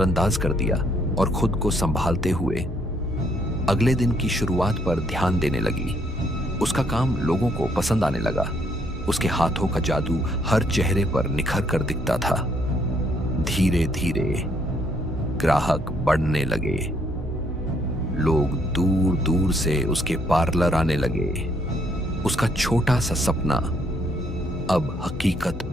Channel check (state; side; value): normal; both; correlation 0.70